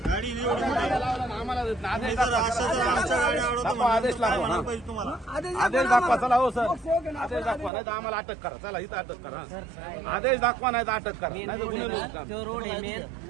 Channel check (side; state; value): left; drops out; at 7.7 s